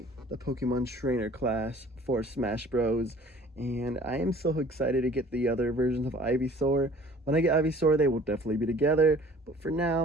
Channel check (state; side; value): normal; both; correlation 0.50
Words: the Pokemon Trainer class for Smash Bros. And I am so excited to get the other versions of Ivysaur. When I get Ivysaur, they will definitely be together, but for